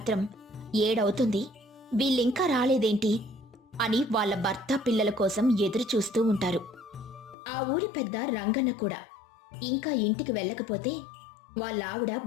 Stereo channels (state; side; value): drops out; right; at 7.4 s